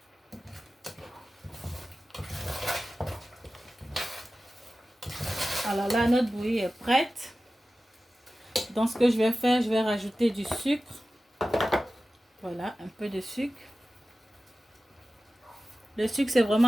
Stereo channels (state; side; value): normal; both; correlation 0.95